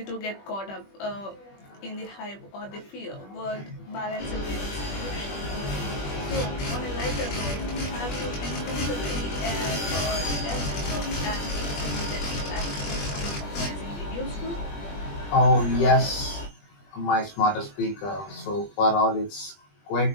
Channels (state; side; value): late; right; 20 ms